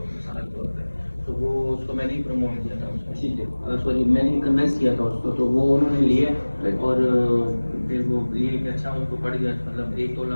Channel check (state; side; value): inverted; both; correlation -1.00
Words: मिसाल के तौर पे, तो वो उसको मैंने ही प्रमोट किया था उसको, ठीक है, सॉरी मैंने ही कन्वेंस किया था उसको, तो वो उन्होंने लिया और फिर वो ये कि अच्छा उनको पड़ गया, मतलब 1 तोला